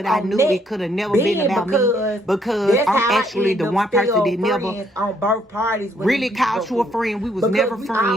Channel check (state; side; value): normal; both; correlation 0.69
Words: I knew it could have never been about me, because I'm actually the one person that never on both parties really called you a friend. We was never